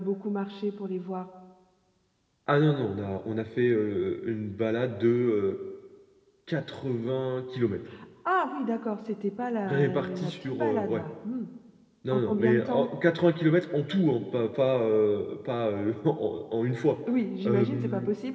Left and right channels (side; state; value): both; identical; correlation 1.00